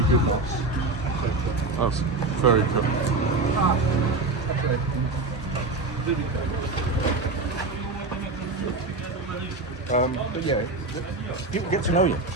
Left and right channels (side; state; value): left; quieter; 3.4 dB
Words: good nuts. That's very cool. But yeah, people get to know you,